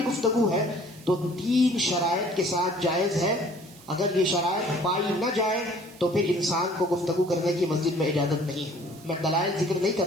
گفتگو ہے تو 3 شرائط کے ساتھ جائز ہے۔ اگر یہ شرائط پائی نہ جائے تو پھر انسان کو گفتگو کرنے کی مسجد میں اجازت نہیں ہے۔ میں دلائل ذکر نہیں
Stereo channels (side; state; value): right; noise; hiss, 22 dB below the sound